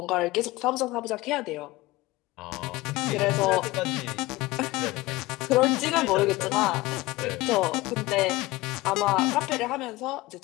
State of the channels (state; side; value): quieter; right; 20.1 dB